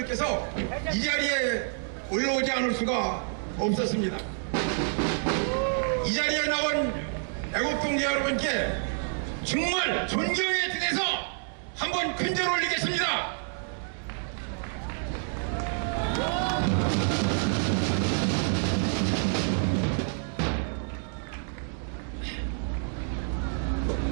이 자리에 올라오지 않을 수가 없었습니다. 이 자리에 나온 애국동지 여러분께 정말 존경의 뜻에서 한번 큰절 올리겠습니다.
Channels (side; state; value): left; silent; 59 dB below the other